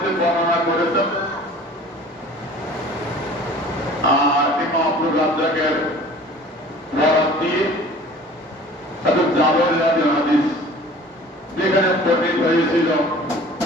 বর্ণনা করেছেন। আর ইমাম আব্দুর রাজ্জাকের বরাত দিয়ে হযরত জাবের রাদিয়াল্লাহু হাদিস যেখানে বর্ণিত হয়েছিল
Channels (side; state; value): both; normal; correlation 0.46